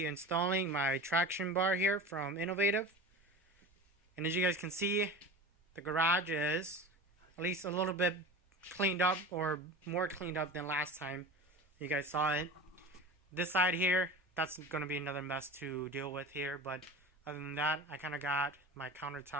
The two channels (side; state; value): both; normal; correlation 0.33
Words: installing my traction bar here from Innovative. And as you guys can see, the garage is at least a little bit cleaned up, or more cleaned up than last time you guys saw it. This side here, that's going to be another mess to deal with here, but other than that, I kind of got my